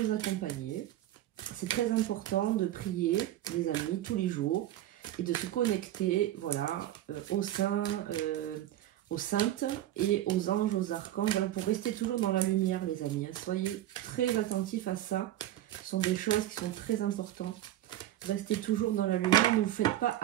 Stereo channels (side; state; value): left; quieter; 13.4 dB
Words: accompagner. C'est très important de prier, les amis, tous les jours et de se connecter, voilà, aux saints, aux saintes et aux anges, aux archanges, voilà, pour rester toujours dans la lumière, les amis. Hein. Soyez très attentifs à ça. Ce sont des choses qui sont très importantes. Restez toujours dans la lumière. Ne vous faites pas